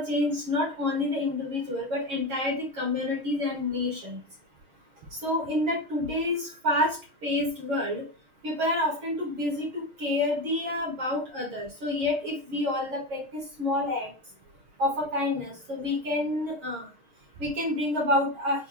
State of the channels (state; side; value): late; left; 6.4 ms